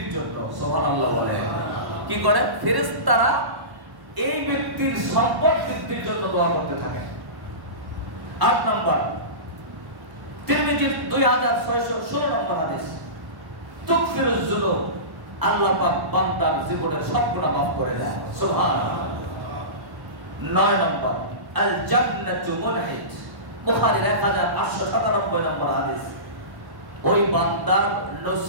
জন্য। সুবহানাল্লাহ বলে কি করেন? ফেরেশতারা এই ব্যক্তির সম্পদ বৃদ্ধির জন্য দোয়া করতে থাকেন। 8 নাম্বার তিরমিজির 2616 নম্বর হাদিস, তুগফিরুজ যুনুব, আল্লাহ পাক বান্দার জীবনের সব গুনাহ মাফ করে দেয়। সুবহানাল্লাহ। 9 নম্বর আল জান্নাতু মুনহিত, বুখারীর 1897 নম্বর হাদিস, ওই বান্দার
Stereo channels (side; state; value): left; late; 1.1 ms